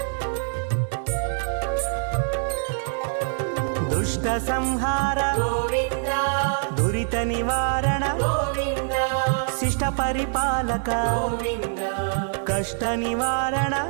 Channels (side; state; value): left; silent; 59 dB below the other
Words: దుష్ట సంహార గోవింద దురిత నివారణ గోవింద శిష్ట పరిపాలక గోవింద కష్ట నివారణ